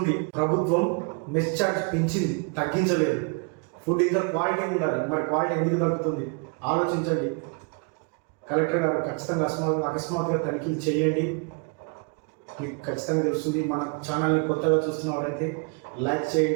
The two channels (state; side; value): quieter; left; 34.4 dB